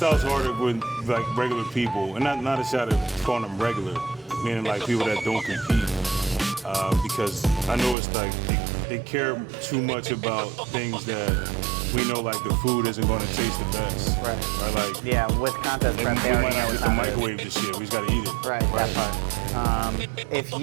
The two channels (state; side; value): drops out; left; at 8.0 s